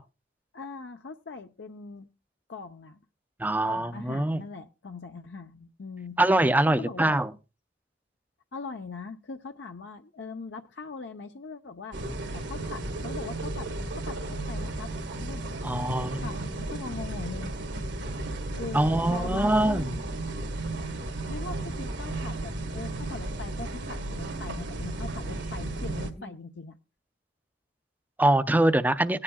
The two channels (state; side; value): normal; both; correlation 0.79